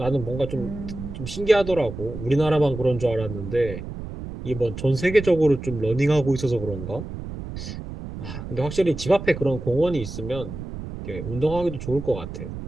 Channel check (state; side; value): noise; right; rumble, 9 dB below the sound